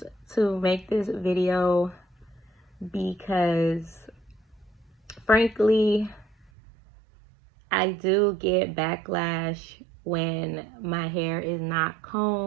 to make this video because, frankly, I do get backlash when my hair is not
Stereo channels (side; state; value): left; drops out; at 6.5 s